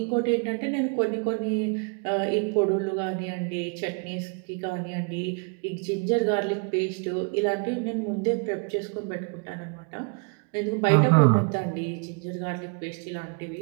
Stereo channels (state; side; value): quieter; left; 35.2 dB